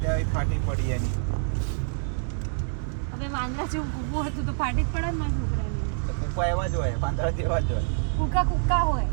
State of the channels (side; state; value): left; silent; digital silence